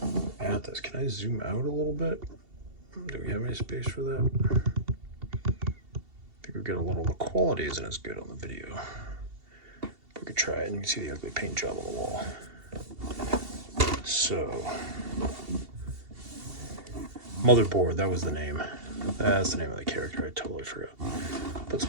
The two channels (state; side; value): late; left; 2.7 ms